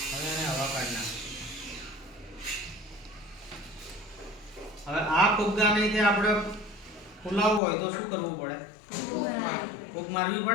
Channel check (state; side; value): drops out; right; at 7.6 s